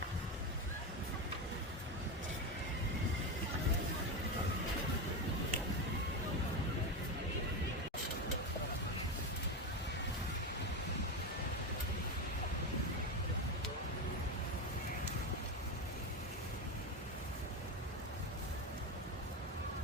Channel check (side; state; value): both; normal; correlation 0.15